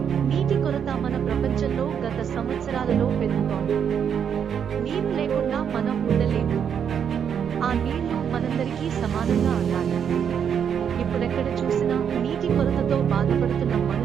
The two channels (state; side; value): quieter; left; 7.9 dB